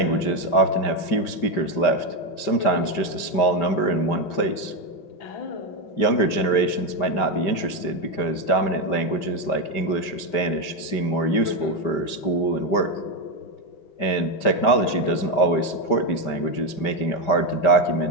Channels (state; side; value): late; right; 5.1 ms